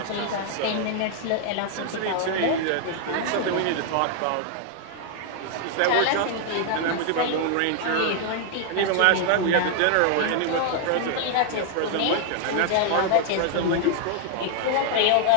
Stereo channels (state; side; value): different; both; correlation 0.00